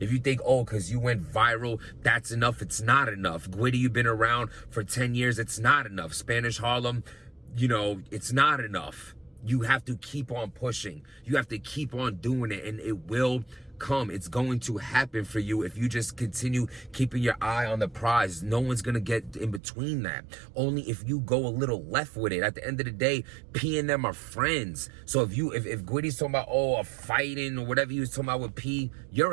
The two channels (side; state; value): left; drops out; at 19.6 s